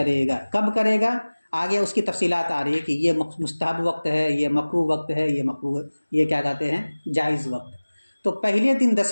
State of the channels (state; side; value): inverted; both; correlation -1.00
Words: گا. کب کرے گا؟ آگے اس کی تفصیلات آ رہی ہے کہ یہ مستحب وقت ہے، یہ مکروہ وقت ہے، یہ کیا کہتے ہیں؟ جائز وقت. تو پہلے دن